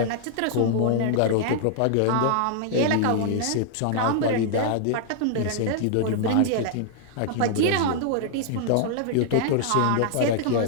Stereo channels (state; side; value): different; both; correlation -0.01